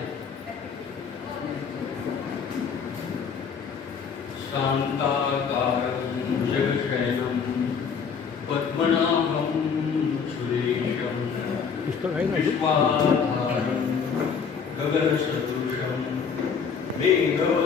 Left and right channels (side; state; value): right; quieter; 6.3 dB